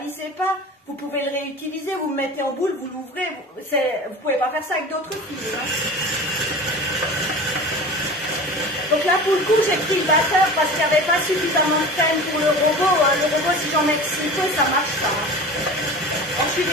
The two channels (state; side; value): normal; both; correlation 0.35